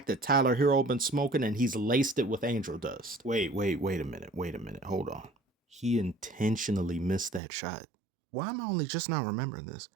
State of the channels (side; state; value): left; drops out; at 7.4 s